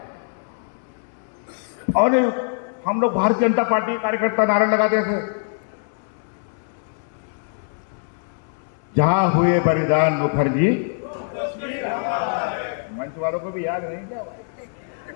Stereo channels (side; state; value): right; silent; 63 dB below the other